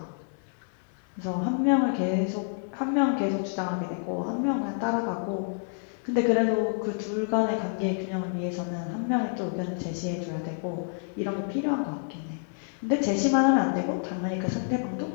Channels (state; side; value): silent; right; digital silence